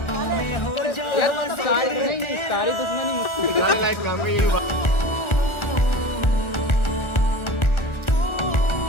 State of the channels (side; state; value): right; late; 1.4 ms